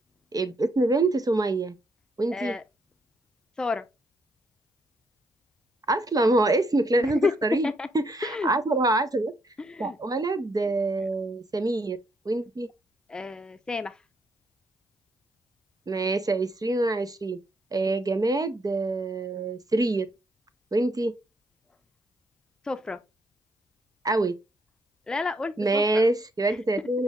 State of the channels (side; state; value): both; normal; correlation 0.74